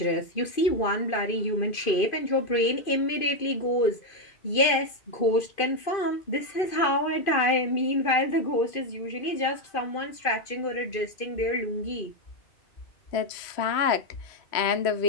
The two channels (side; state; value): right; late; 2.5 ms